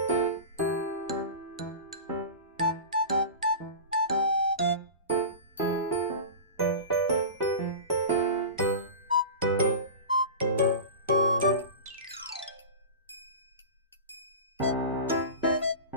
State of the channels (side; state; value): both; inverted; correlation -0.30